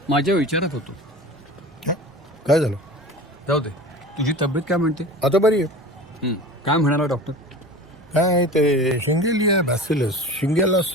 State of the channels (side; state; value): both; normal; correlation 0.35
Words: माझ्या विचारात होतो. काय झालं? जाऊ दे. तुझी तब्येत काय म्हणते? आता बरी आहे. काय म्हणाला डॉक्टर? काय ते शिंगेलिया बॅसिलस